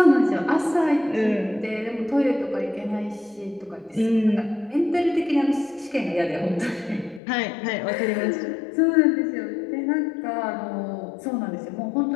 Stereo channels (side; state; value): right; drops out; at 7.2 s